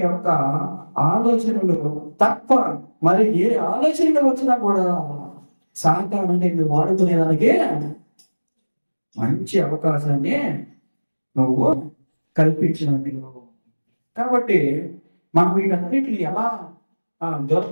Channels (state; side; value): inverted; both; correlation -1.00